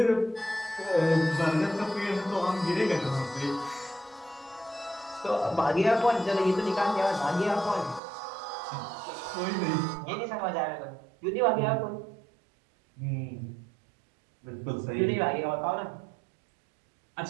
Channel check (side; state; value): left; drops out; at 8.0 s